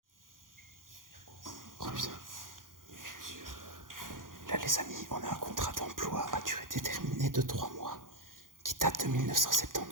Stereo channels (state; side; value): late; left; 0.90 ms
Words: Oh putain. Là les amis, on a un contrat d'emploi à durée déterminée de 3 mois qui date de